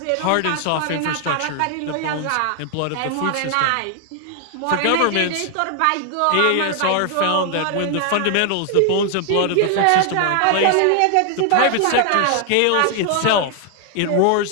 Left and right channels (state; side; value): different; both; correlation 0.00